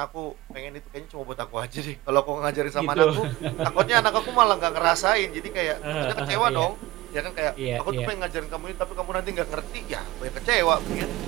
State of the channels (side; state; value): left; quieter; 18.6 dB